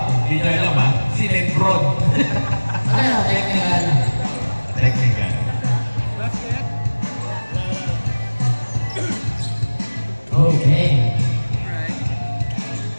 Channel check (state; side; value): inverted; both; correlation -1.00